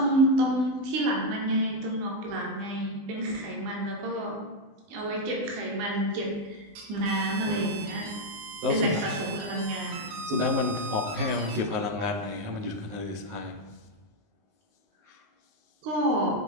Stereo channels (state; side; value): late; left; 19 ms